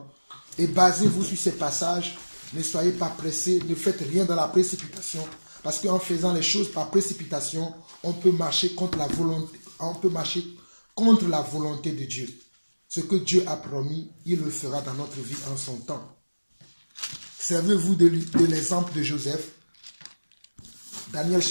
Et basez-vous sur ces passages. Ne soyez pas pressés, ne faites rien dans la précipitation. Parce qu'en faisant les choses par précipitation, on peut marcher contre la volonté de Dieu. Ce que Dieu a promis, il le fera dans notre vie en son temps. Servez-vous de l'exemple de Joseph. Daniel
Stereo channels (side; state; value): both; inverted; correlation -1.00